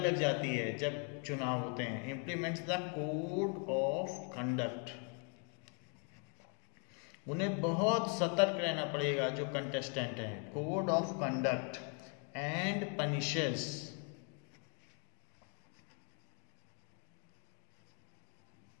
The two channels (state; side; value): quieter; right; 39.9 dB